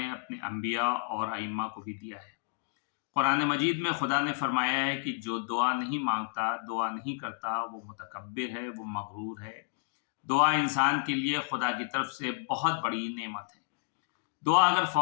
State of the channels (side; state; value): right; silent; digital silence